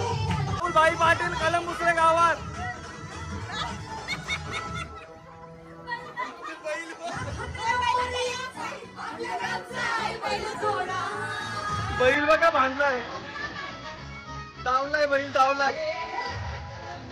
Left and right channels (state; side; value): identical; both; correlation 1.00